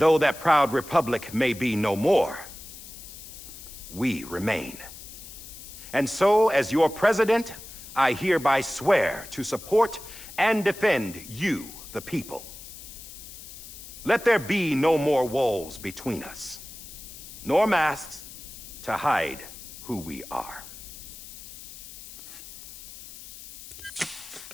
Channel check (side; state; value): left; noise; hiss, 14 dB below the sound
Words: that proud republic may be no more, we remain. And so, as your president, I hereby swear to support and defend you, the people. Let there be no more walls between us, nor masks to hide who we are.